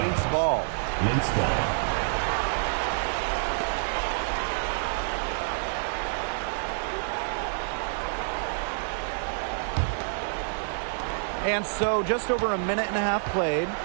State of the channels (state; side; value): silent; left; digital silence